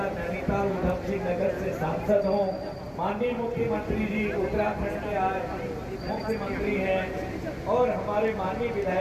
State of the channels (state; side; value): identical; both; correlation 1.00